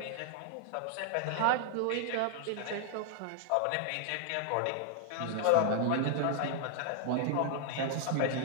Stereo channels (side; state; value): both; different; correlation 0.00